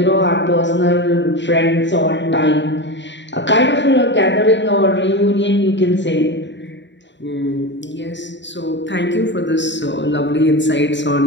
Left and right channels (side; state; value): right; late; 0.52 ms